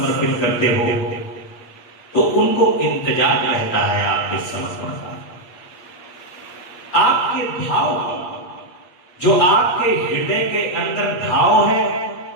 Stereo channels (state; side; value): late; right; 8.4 ms